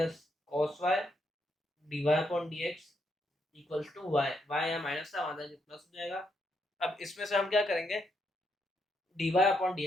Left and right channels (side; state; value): both; normal; correlation 0.78